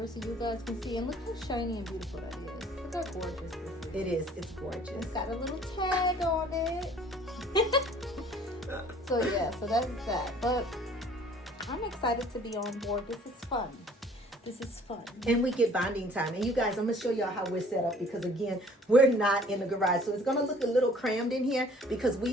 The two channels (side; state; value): both; normal; correlation 0.54